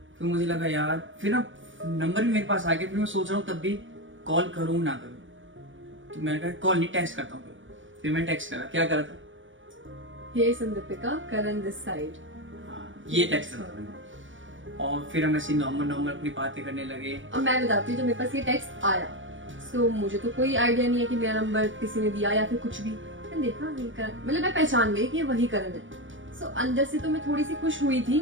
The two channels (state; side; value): late; left; 0.56 ms